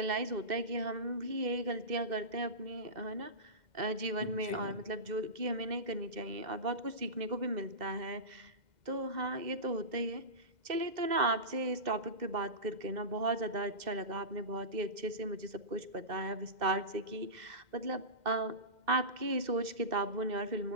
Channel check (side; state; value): left; late; 2.0 ms